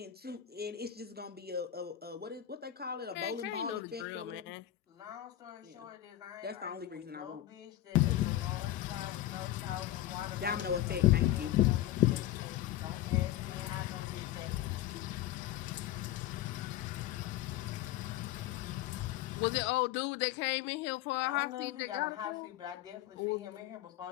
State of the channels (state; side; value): quieter; right; 13.2 dB